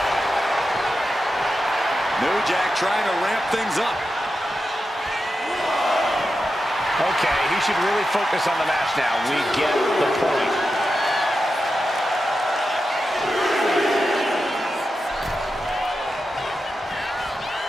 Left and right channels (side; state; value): both; normal; correlation 0.90